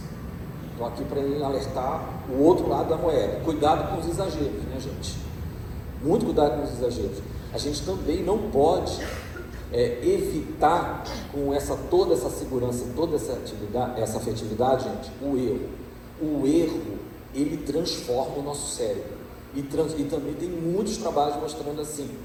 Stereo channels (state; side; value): identical; both; correlation 1.00